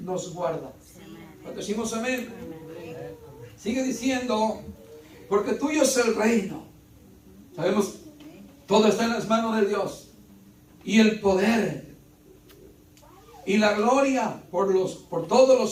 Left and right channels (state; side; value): identical; both; correlation 1.00